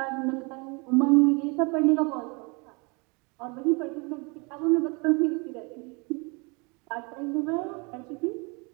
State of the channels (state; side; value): quieter; left; 30.5 dB